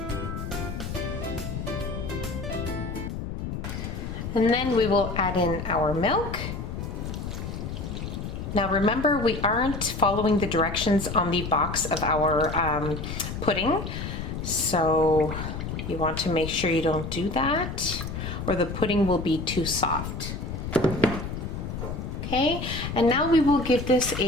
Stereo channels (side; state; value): left; noise; rumble, 6 dB below the sound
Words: And then we will add in our milk. Now remember, we aren't following the directions on the box of our pudding, so you want to make sure you don't do that or the pudding will be too soft. Okay, and now we will give this